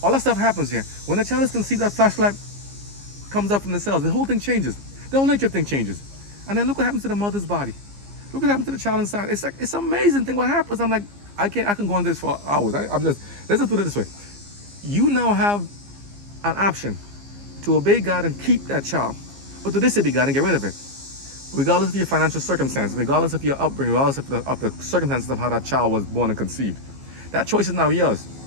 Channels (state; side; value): late; left; 15 ms